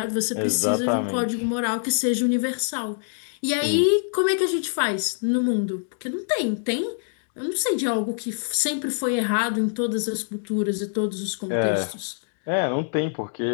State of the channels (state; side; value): silent; right; digital silence